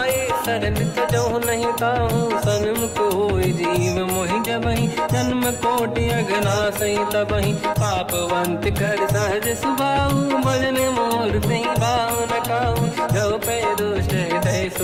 सरल तजो नहीं ताऊं। सन्मुख होए जीव मोहि जबहि जन्म कोटि अगना सही तबहि। पापवंत कर सहज सुभाऊ भजन मोर तहि भाव न काऊ। जो पे दुष्ट हृदय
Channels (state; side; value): identical; both; correlation 1.00